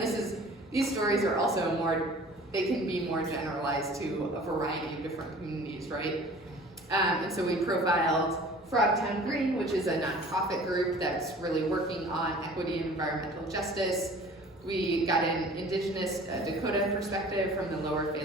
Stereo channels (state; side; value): normal; both; correlation 0.46